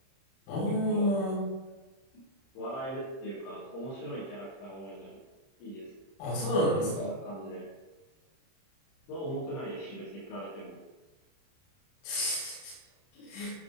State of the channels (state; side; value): late; right; 31 ms